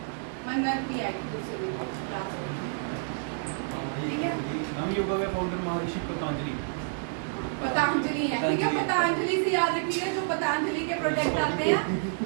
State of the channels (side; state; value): left; silent; digital silence